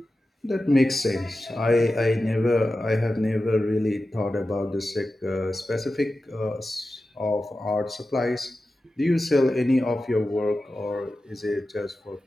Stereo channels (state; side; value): normal; both; correlation 0.93